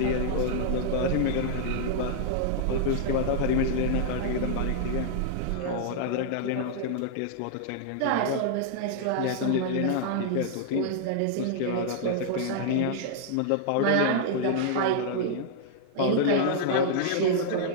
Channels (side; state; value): both; different; correlation -0.01